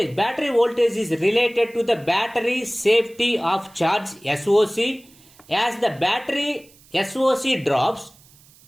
battery voltage is related to the battery safety of charge SOC. As the battery SOC drops,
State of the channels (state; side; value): noise; right; hiss, 27 dB below the sound